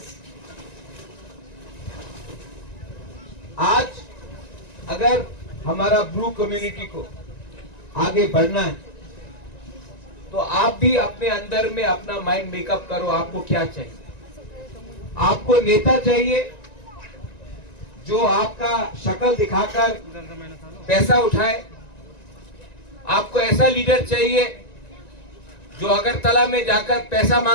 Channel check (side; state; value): right; late; 1.9 ms